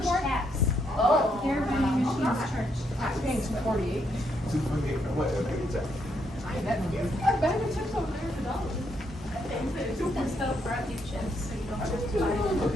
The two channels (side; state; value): both; normal; correlation 0.76